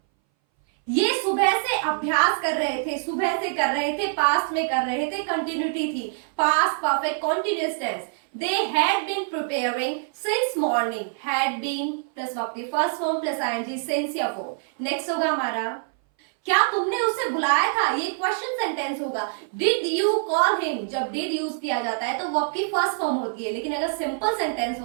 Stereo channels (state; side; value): silent; left; 60 dB below the other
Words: ये सुबह से अभ्यास कर रहे थे. सुबह से कर रहे थे, पास्ट में कर रहे थे, कंटिन्यूटी थी. Past perfect continuous tense. They had been preparing since morning. Had been plus verb की first form plus ING since या फॉर. नेक्स्ट होगा हमारा, क्या तुमने उसे बुलाया था. ये क्वेश्चन सेंटेंस होगा. Did you call him. जब डिड यूज किया जाता है तो वर्ब की फर्स्ट फॉर्म होती है, लेकिन अगर सिंपल सेंटेंस